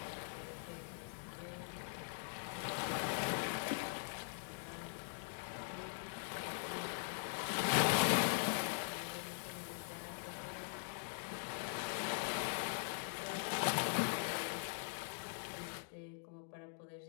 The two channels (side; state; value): right; silent; digital silence